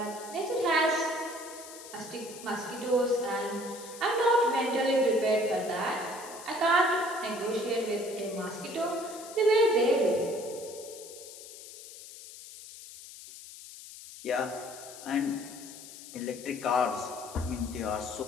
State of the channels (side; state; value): left; noise; hiss, 15 dB below the sound